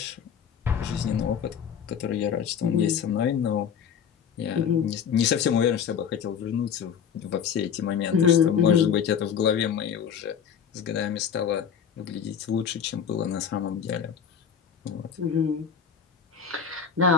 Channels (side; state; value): right; quieter; 7.6 dB